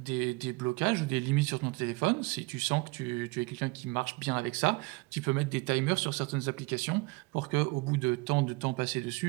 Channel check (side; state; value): left; quieter; 25.7 dB